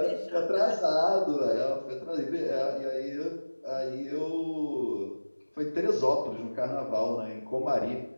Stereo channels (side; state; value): both; inverted; correlation -1.00